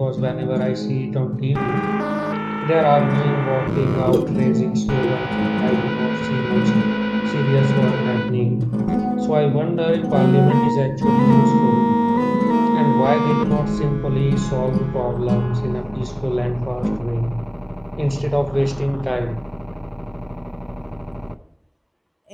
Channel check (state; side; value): identical; both; correlation 1.00